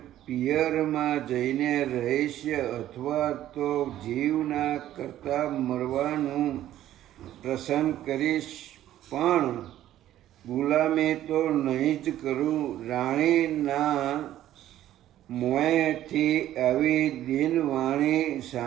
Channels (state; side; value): quieter; left; 12.8 dB